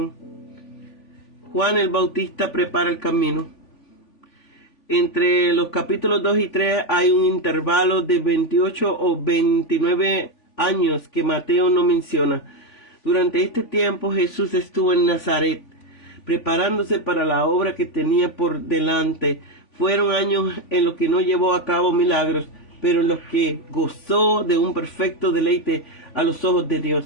Juan el Bautista prepara el camino. Entre los capítulos 2 y 3 hay un intervalo de 28 o 29 años que Mateo no menciona. Durante este tiempo Jesús estuvo en Nazaret, preparándose para la obra que tenía por delante. Fueron años en los que no llevó a cabo milagros, pero en los que gozó de un perfecto deleite a los ojos de Dios.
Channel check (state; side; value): late; right; 3.5 ms